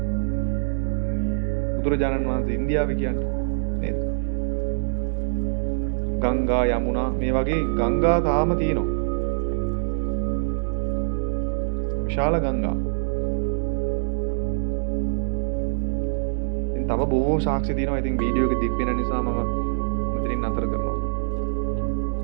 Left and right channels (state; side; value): silent; left; digital silence